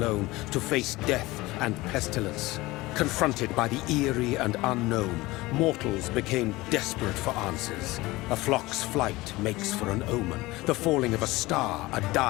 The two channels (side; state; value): right; quieter; 20.2 dB